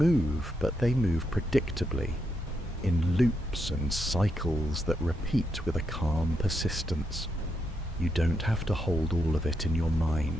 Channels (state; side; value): normal; both; correlation 0.81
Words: but they move predictably, in loops and cycles that repeat with a calm persistence. You don't have to hold all of it in your